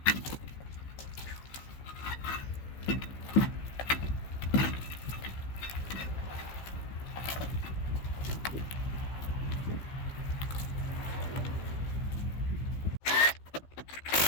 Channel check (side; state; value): right; late; 15 ms